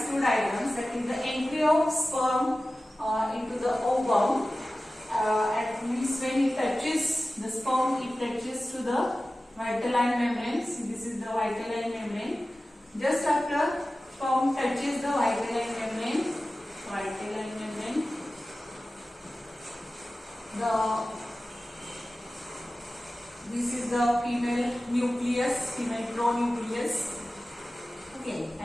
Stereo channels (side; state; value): both; normal; correlation 0.96